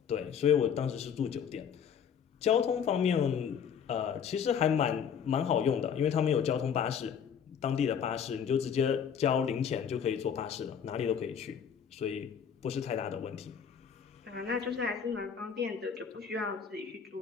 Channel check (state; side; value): quieter; right; 7.6 dB